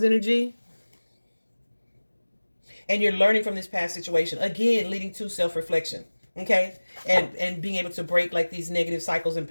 energy. And you're learning from this past situation. Again, leading to self-reflection. Okay? And being able to break like these negative cycles and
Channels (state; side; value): inverted; both; correlation -1.00